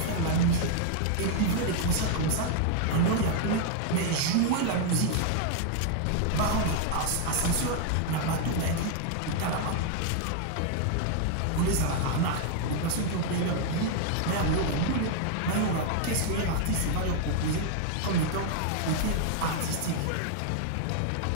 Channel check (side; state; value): both; different; correlation 0.00